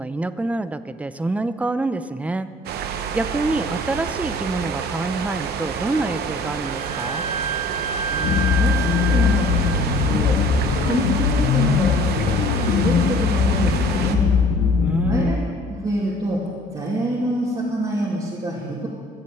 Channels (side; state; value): both; normal; correlation 0.53